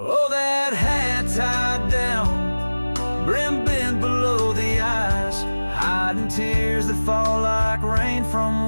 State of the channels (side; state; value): both; inverted; correlation -1.00